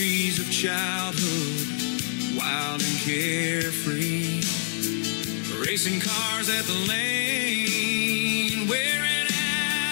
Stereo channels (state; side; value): silent; right; digital silence